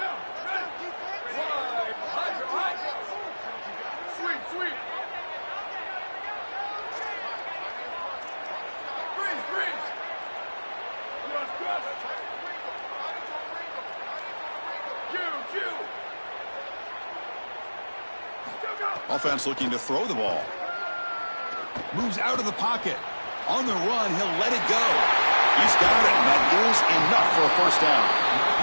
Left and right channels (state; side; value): inverted; both; correlation -1.00